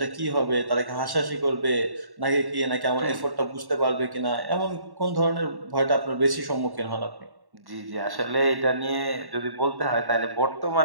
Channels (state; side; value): late; left; 1.1 ms